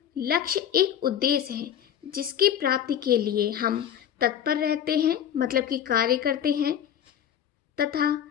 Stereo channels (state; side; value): quieter; right; 9.7 dB